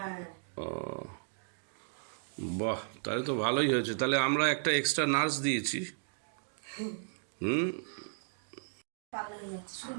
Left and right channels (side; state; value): left; silent; digital silence